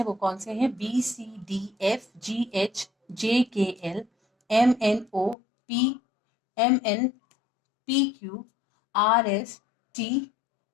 वो कौन से हैं, B C D F G H J K L M N O P M N P Q R S T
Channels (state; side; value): drops out; right; at 5.4 s